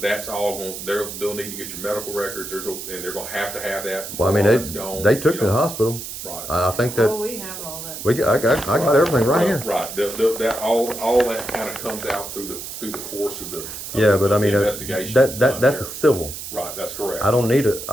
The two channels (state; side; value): noise; right; hiss, 9 dB below the sound